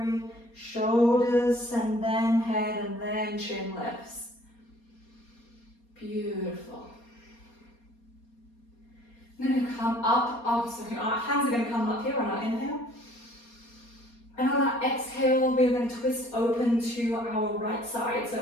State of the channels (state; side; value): late; right; 4.2 ms